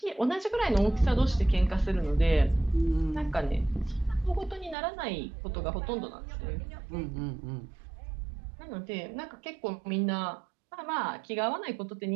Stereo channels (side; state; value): left; drops out; at 4.8 s